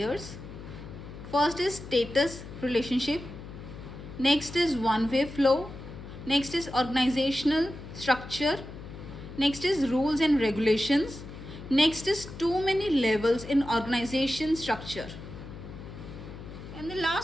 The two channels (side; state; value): left; noise; hum, 13 dB below the sound